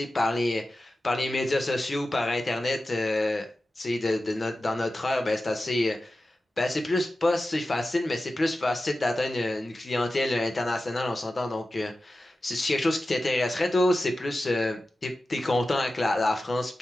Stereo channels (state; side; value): normal; both; correlation 0.94